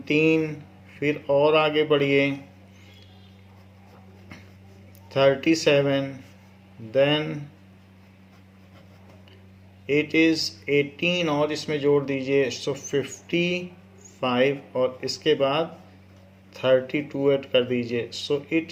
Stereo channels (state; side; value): identical; both; correlation 1.00